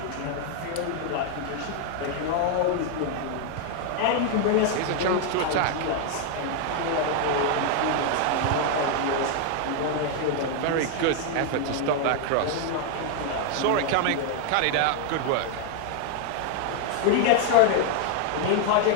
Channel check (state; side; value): different; both; correlation 0.00